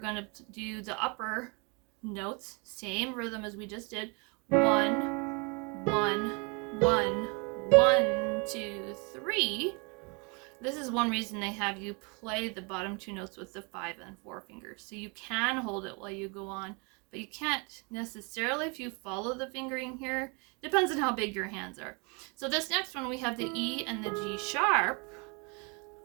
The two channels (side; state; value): left; quieter; 32.2 dB